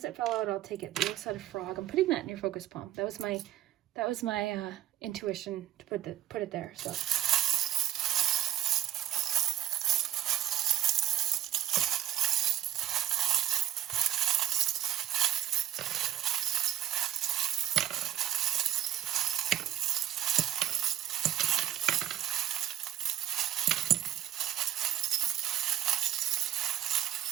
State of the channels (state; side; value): quieter; left; 12.3 dB